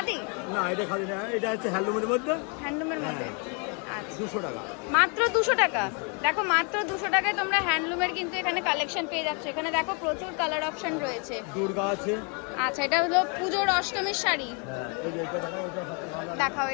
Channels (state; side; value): quieter; right; 35.3 dB